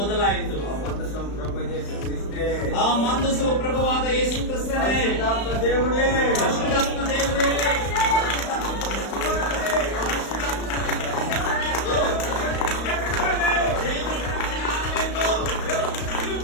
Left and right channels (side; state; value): right; late; 35 ms